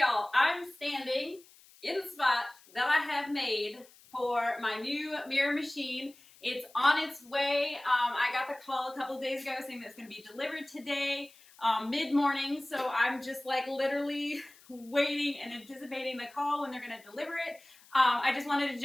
I'm standing in the spot that I have made for my new mirror machine. It's on its way. I got the call a couple days ago saying that it's going to be delivered today, mid-morning. So I'm just like literally waiting and anticipating the call when they're going to deliver it. I just wanted to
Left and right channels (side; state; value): left; noise; hiss, 25 dB below the sound